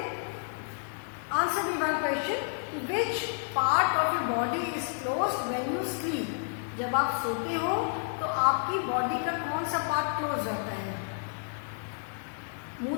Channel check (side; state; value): right; silent; digital silence